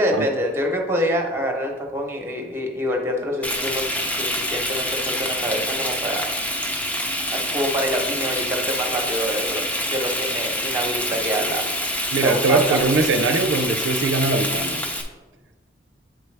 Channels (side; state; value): both; normal; correlation 0.28